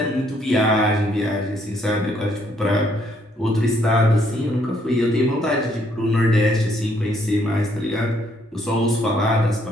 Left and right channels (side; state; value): both; normal; correlation 0.69